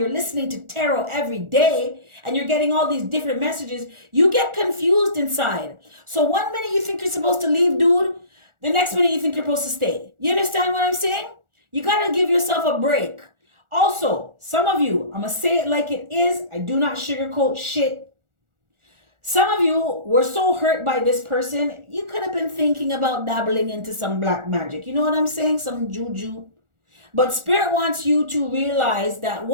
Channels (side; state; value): left; late; 1.4 ms